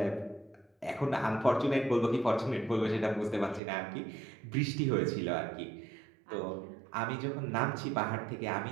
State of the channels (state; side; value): drops out; left; at 3.6 s